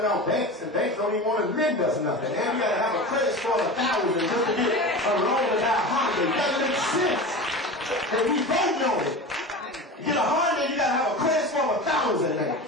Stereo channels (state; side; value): normal; both; correlation 0.30